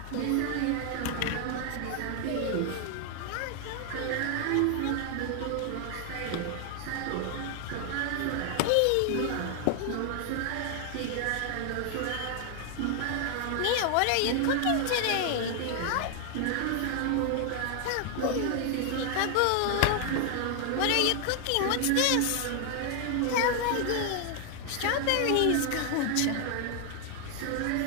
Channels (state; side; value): different; both; correlation 0.00